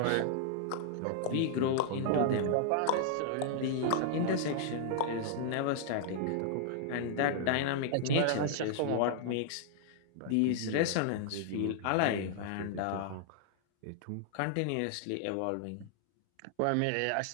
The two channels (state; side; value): different; both; correlation -0.01